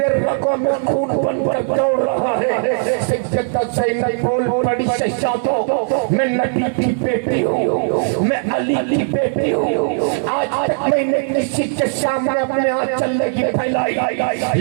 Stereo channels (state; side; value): silent; left; digital silence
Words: رگوں میں خون بن کر دوڑ رہا ہے سیدہ زینب بول پڑی شہزادو میں نبی کی بیٹی ہوں میں علی کی بیٹی ہوں آج تک میں نے کسی کے سامنے اپنے آنچل نہیں پھیلائی